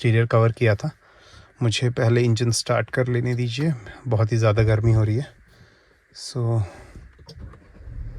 कवर किया था। मुझे पहले इंजन स्टार्ट कर लेने दीजिए, बहुत ही ज़्यादा गर्मी हो रही है। So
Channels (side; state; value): both; identical; correlation 1.00